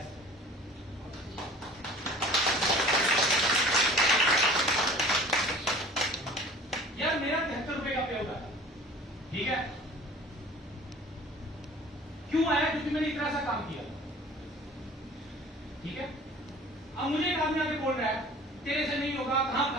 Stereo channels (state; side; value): normal; both; correlation 0.46